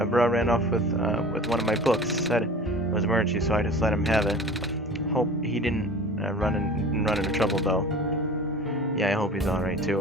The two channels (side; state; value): both; normal; correlation 0.40